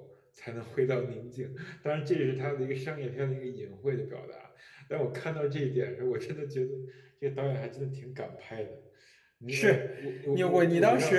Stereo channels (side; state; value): both; identical; correlation 1.00